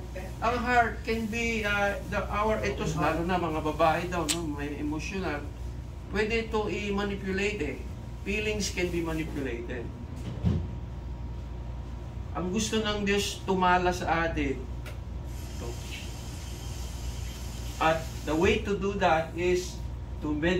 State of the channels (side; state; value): both; identical; correlation 1.00